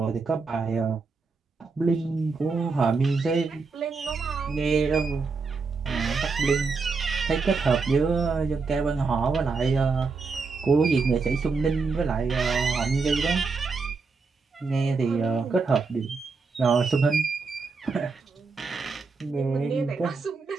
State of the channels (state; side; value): quieter; left; 4.5 dB